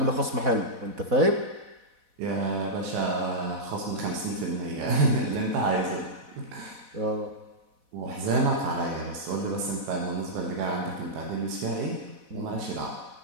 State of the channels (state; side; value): late; left; 4.1 ms